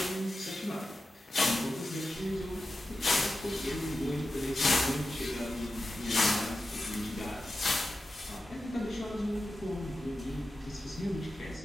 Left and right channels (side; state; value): both; normal; correlation 0.92